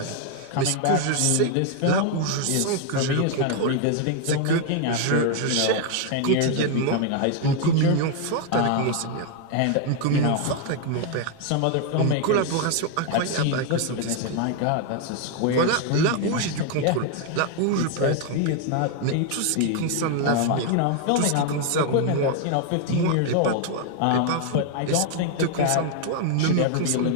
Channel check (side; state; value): both; different; correlation 0.01